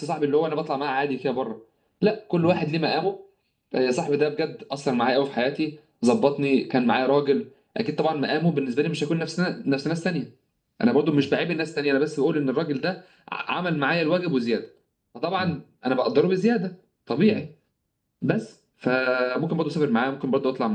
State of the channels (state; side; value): identical; both; correlation 1.00